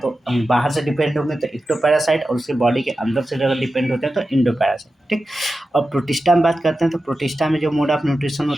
बाहर से डिपेंड होंगे तो इक्टोपैरासाइट, और उसके बॉडी के अंदर से अगर डिपेंड होते हैं तो इंडोपैरासाइट, ठीक। और प्रोटिस्टा में बात करते हैं तो प्रोटिस्टा में जो मोड ऑफ न्यूट्रिशन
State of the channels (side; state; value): both; normal; correlation 0.92